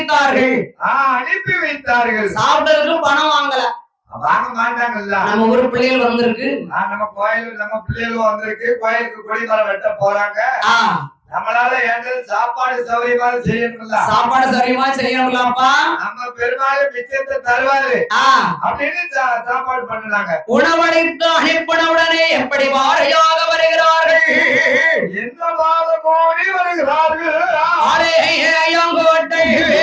அனுப்பி வைத்தார்கள். சாப்பிட்டதுக்கு பணம் வாங்கல, வாங்க மாட்டாங்கல்ல. நம்ம ஊரு பிள்ளைகள் வந்திருக்கு. நம்ம கோயிலுக்கு நம்ம பிள்ளைகளும் வந்திருக்கு. கோயிலுக்கு கொடிமரம் வெட்ட போறாங்க. நம்மளால ஏண்டது சாப்பாடு சௌரியமா செய்யணும்ல. சாப்பாடு சௌரியமா செய்யணும்லப்பா. நம்ம பெருமாள் மிச்சத்தை தருவாரு அப்படின்னு சாப்பாடு பண்ணுனாங்க. உணவளித்து அனுப்பின உடனே எப்படி வாரையாக வருகிறார்கள், என்ன வார கோடி வருகிறார்கள். ஆலயங்கோட்டை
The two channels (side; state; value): both; identical; correlation 1.00